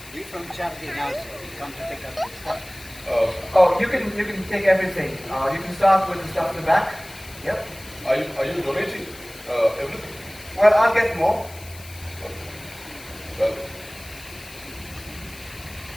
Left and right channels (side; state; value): left; noise; hiss, 18 dB below the sound